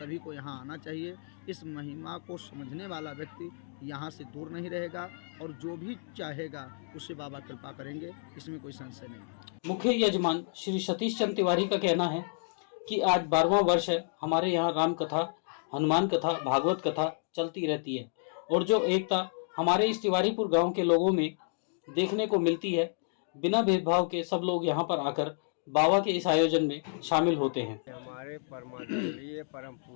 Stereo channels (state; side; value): silent; right; digital silence